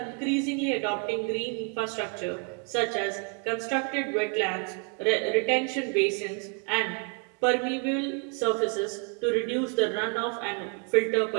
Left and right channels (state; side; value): quieter; left; 36.8 dB